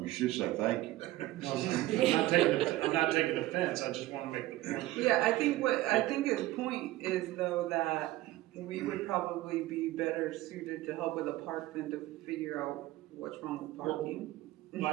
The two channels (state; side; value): quieter; left; 16.9 dB